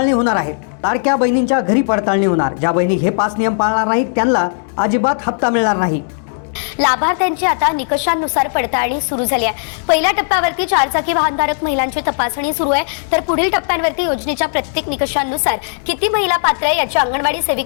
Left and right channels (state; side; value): silent; right; 69 dB below the other